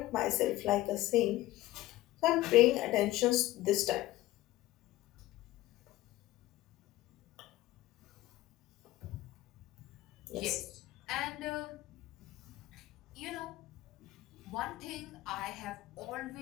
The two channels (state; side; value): quieter; right; 16.6 dB